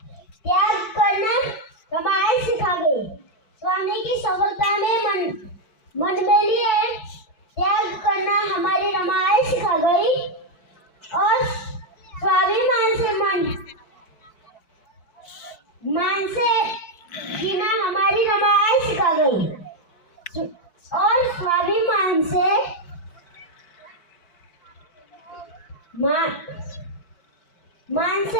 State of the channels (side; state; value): right; late; 4.6 ms